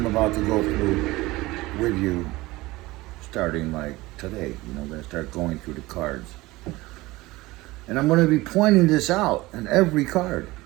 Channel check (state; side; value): quieter; left; 20.0 dB